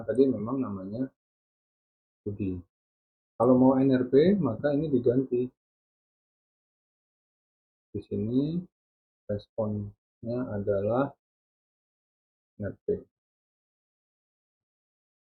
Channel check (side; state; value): both; identical; correlation 1.00